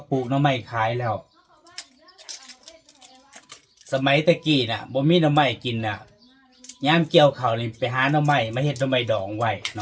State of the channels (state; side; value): identical; both; correlation 1.00